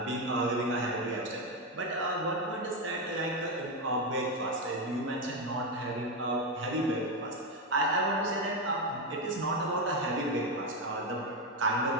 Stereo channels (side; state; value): both; normal; correlation 0.09